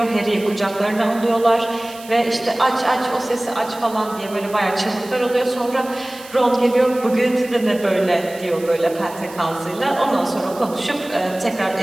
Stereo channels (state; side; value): noise; right; hiss, 19 dB below the sound